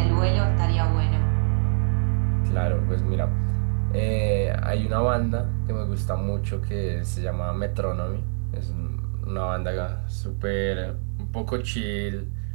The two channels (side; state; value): left; silent; digital silence